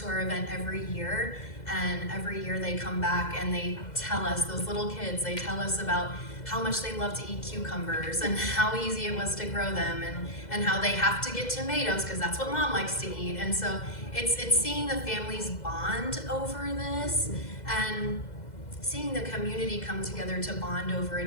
to our event every year, and every year they come back and they tell us, those little kids, they tell us about how much they love to eat cucumbers and how easy it was to grow them, and how they have to get tomatoes because that's what mom likes to eat. And so it's seeing the families bond over this and seeing the community come together to bond over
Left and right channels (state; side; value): late; right; 2.0 ms